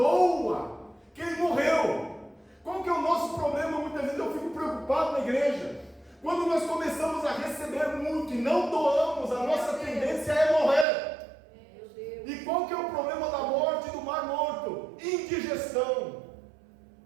que ele morreu. Qual que é o nosso problema? Muitas vezes eu fico preocupado na igreja. Quando nós começamos a receber muito e não doamos, a nossa tendência é morrer. E qual que é o problema da morte do Mar Morto? Indigestão.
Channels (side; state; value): left; drops out; at 10.9 s